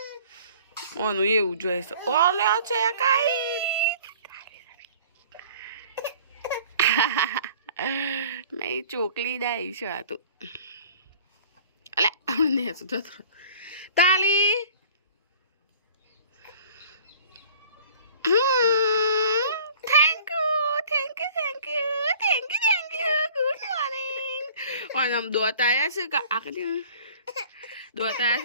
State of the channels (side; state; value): both; inverted; correlation -0.49